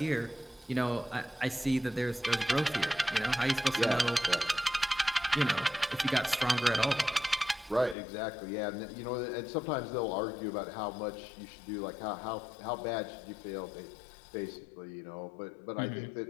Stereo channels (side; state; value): right; drops out; at 8.0 s